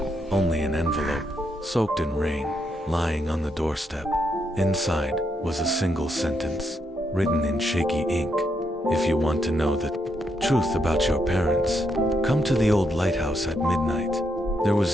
only an envelope, soaked in rain, lying on the doorstep. Inside was a single sentence, written in shaky ink. If you want to know the truth about your parents, come to the old lighthouse at midnight. There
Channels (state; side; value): normal; both; correlation 0.79